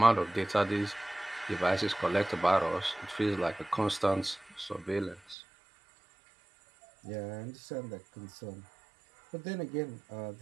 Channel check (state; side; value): drops out; left; at 5.4 s